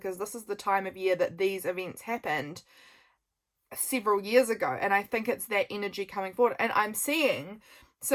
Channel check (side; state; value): both; identical; correlation 1.00